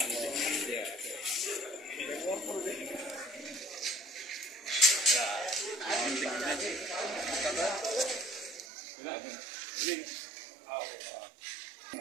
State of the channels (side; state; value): left; drops out; at 8.7 s